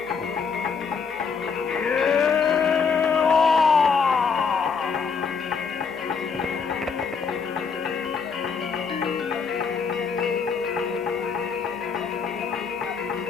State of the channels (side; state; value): right; quieter; 5.6 dB